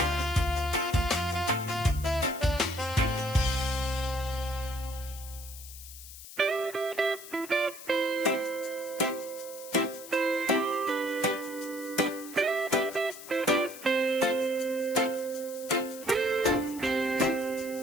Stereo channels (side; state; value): left; noise; hiss, 14 dB below the sound